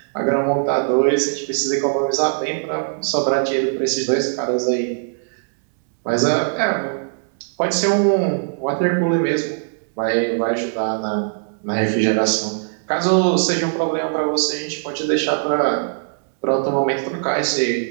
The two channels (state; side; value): silent; left; 66 dB below the other